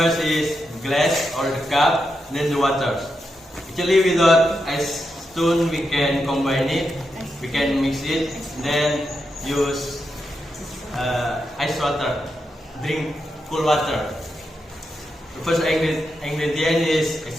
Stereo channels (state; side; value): normal; both; correlation 0.85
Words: is glass or the cup, then the water. Actually, without ice stone, we can combine it. We can mix it. Then use ice water. Drink cool water. The first ingredient is